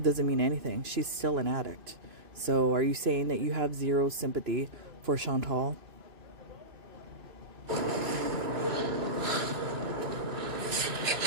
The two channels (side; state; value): left; late; 2.6 ms